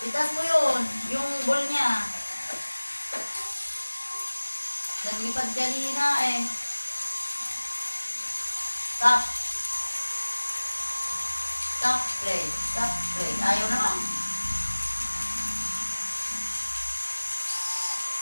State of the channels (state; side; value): inverted; both; correlation -1.00